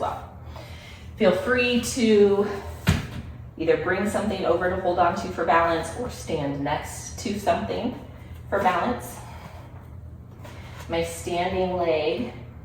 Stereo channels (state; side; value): identical; both; correlation 1.00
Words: Feel free to either bring something over to hold on to for balance or stand next to something for balance. My standing leg,